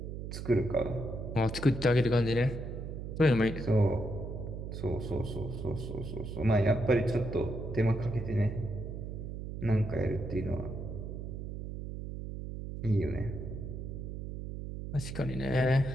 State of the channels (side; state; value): right; noise; hum, 7 dB below the sound